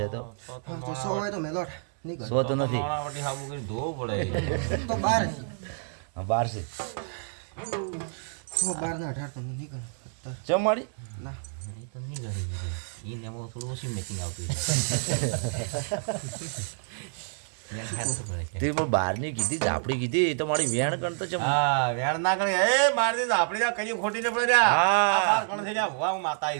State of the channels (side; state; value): left; silent; 59 dB below the other